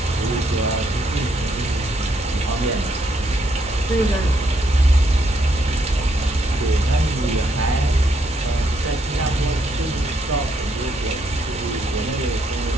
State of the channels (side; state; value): both; normal; correlation 0.74